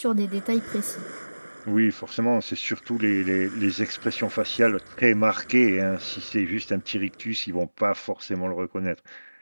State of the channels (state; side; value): inverted; both; correlation -1.00